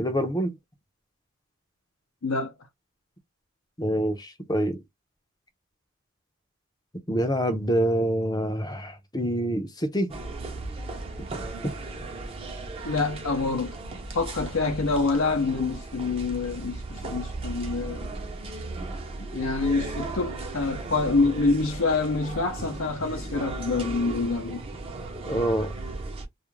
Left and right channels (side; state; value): both; normal; correlation 0.43